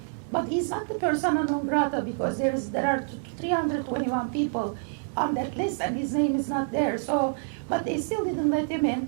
But he's not the persona non grata because there are 321 people on that list and his name is not there. So, but they still didn't let him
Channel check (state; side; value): silent; left; digital silence